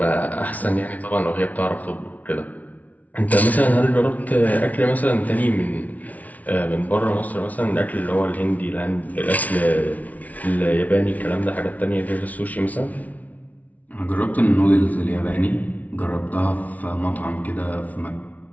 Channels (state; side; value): late; right; 0.072 ms